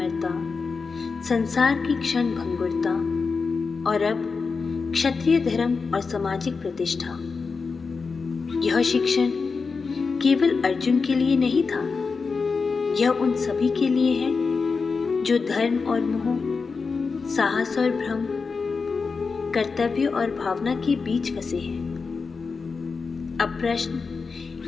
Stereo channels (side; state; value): right; quieter; 4.8 dB